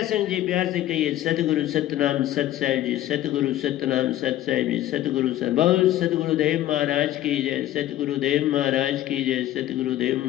जी, प्यार से कहिए सतगुरु सतनाम सत साहिब जी, सतगुरु सतनाम सत साहिब जी, सतगुरु बहुत सतगुरुदेव महाराज की जय, सतगुरुदेव महाराज की जय, सतगुरुदेव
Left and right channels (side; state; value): right; quieter; 13.7 dB